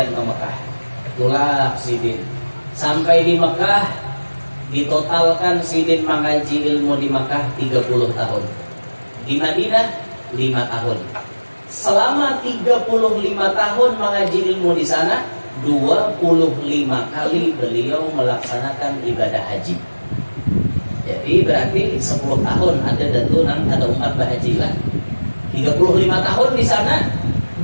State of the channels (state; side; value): inverted; both; correlation -1.00